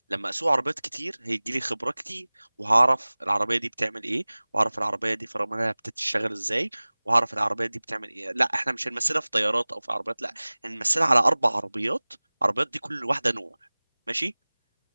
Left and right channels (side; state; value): both; inverted; correlation -1.00